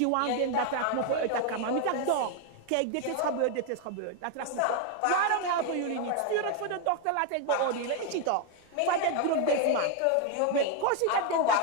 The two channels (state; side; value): different; both; correlation 0.01